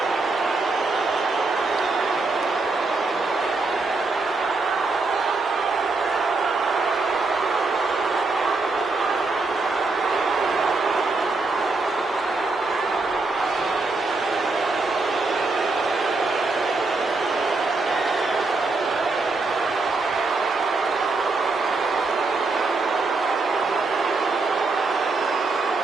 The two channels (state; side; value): quieter; left; 3.6 dB